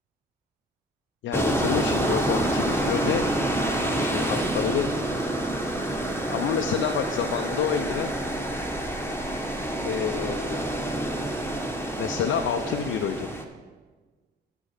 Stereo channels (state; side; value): normal; both; correlation 0.43